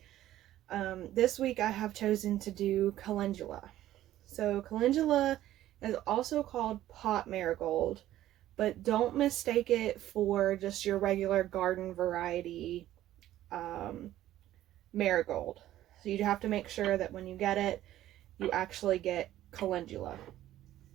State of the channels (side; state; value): left; quieter; 13.6 dB